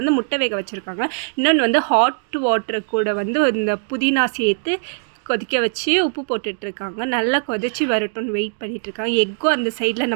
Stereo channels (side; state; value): left; silent; digital silence